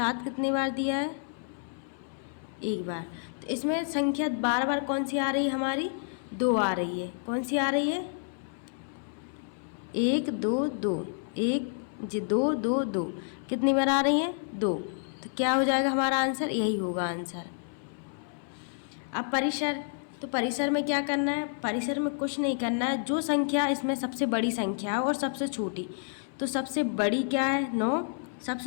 कितनी बार दिया है, एक बार। तो इसमें संख्या बार बार कौन सी आ रही है हमारी, दो आ रही है। कौन सी आ रही है, एक दो दो, एक दो दो दो, कितनी बार आ रही है, दो। तो क्या हो जाएगा हमारा आंसर, यही होगा आंसर। अब परिसर, तो परिसर में क्या करना है, परिसर में कुछ नहीं करना है, जो संख्या इसमें सबसे बड़ी संख्या है और सबसे छोटी। तो सबसे बड़ी क्या है, 9,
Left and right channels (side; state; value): right; silent; 58 dB below the other